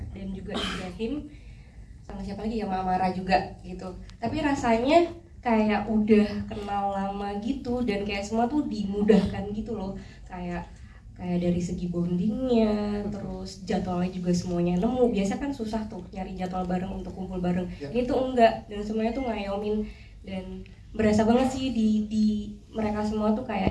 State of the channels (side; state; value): both; identical; correlation 1.00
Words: dan juga Ibrahim, sama siapa lagi ya, sama Amara juga gitu. Tapi rasanya kayak udah kenal lama gitu dan kayak semua tuh dimudahkan gitu loh, kayak dari segi bondingnya, terus jadwalnya juga semuanya nemu. Biasa kan susah tuh nyari jadwal bareng untuk kumpul bareng. Ini tuh enggak, dan semuanya tuh ngayomin dan berasa banget sih di mereka semua tuh